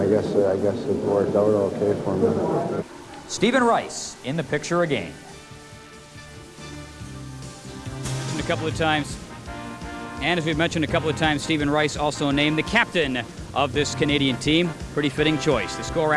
guess it worked out okay for me. Stephen Rice in the picture again. A couple of times. And as we've mentioned a couple of times, Stephen Rice also named the captain of this Canadian team. Pretty fitting choice. The score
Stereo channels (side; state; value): both; identical; correlation 1.00